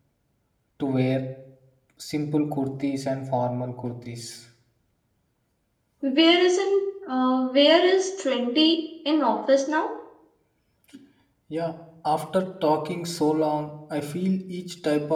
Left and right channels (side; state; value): both; identical; correlation 1.00